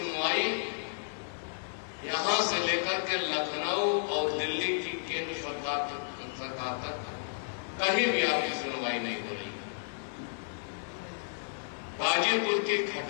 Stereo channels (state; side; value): silent; right; digital silence